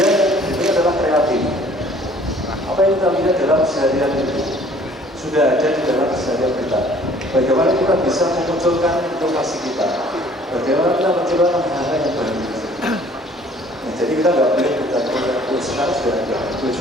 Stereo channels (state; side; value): normal; both; correlation 0.55